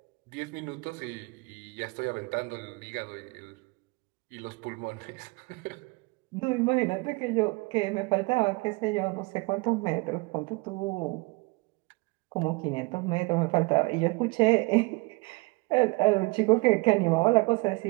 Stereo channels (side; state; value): left; quieter; 25.7 dB